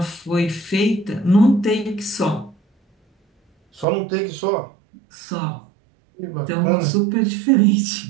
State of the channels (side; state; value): left; drops out; at 3.9 s